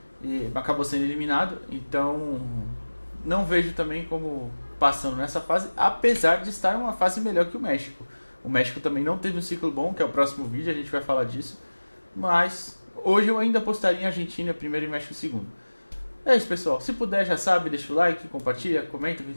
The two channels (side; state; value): both; inverted; correlation -1.00